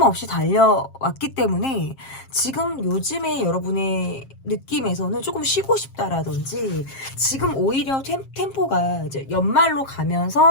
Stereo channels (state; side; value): late; right; 7.5 ms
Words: 없이 달려왔기 때문에 지금 요즘에 여러분의 느낌에서는 조금 쉬고 싶다라든지, 지금 오히려 템포가 이제 연말로